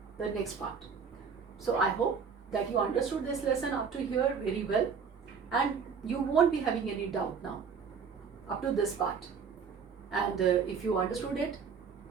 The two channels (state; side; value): quieter; left; 6.1 dB